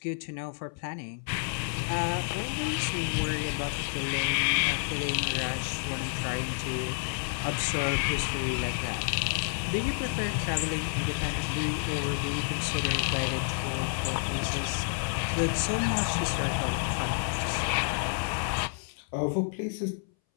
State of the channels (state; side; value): silent; right; 58 dB below the other